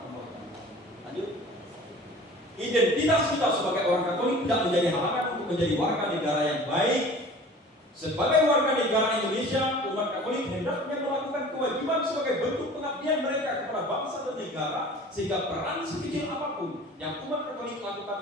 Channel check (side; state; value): both; normal; correlation 0.44